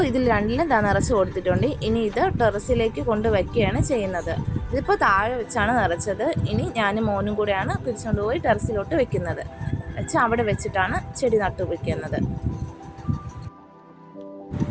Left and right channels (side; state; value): both; identical; correlation 1.00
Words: ഇതിൽ 2ലും നിറച്ച് കൊടുത്തിട്ടുണ്ട്. ഇനി ഇത് ടെറസിലേക്ക് കൊണ്ടുവയ്ക്കുകയാണ് ചെയ്യുന്നത്. ഇതിപ്പോൾ താഴെ വെച്ചാണ് നിറച്ചത്. ഇനി ഞാനും മോനും കൂടെയാണ് പിടിച്ചുകൊണ്ട് പോയി ടെറസിലോട്ട് വെക്കുന്നത്. അവിടെ വെച്ചിട്ടാണ് ചെടി നട്ടുവെക്കുന്നത്.